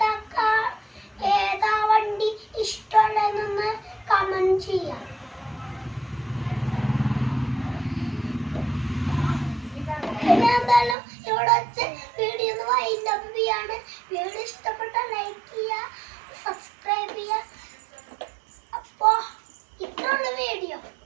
ഏതാ വണ്ടി ഇഷ്ടമുള്ളതെന്നൊന്ന് കമന്റ് ചെയ്യാം. പിന്നെ എന്തായാലും ഇവിടെ വെച്ച് വീഡിയോ ഒന്ന് വൈൻഡപ്പ് ചെയ്യാണ്. വീഡിയോ ഇഷ്ടപ്പെട്ട ലൈക്ക് ചെയ്യുക, സബ്സ്ക്രൈബ് ചെയ്യുക. അപ്പോ ഇത്രയുള്ള വീഡിയോ.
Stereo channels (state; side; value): drops out; left; at 11.0 s